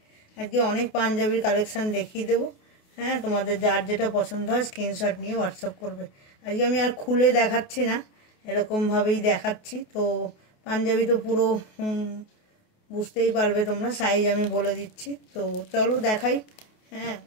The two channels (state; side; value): late; right; 28 ms